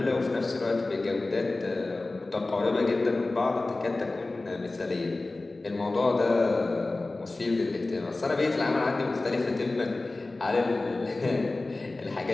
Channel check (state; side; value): quieter; right; 3.1 dB